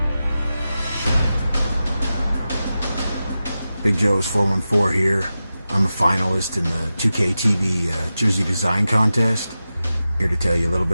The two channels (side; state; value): both; inverted; correlation -0.93